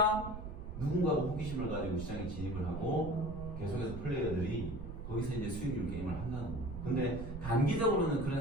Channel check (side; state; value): right; noise; rumble, 8 dB below the sound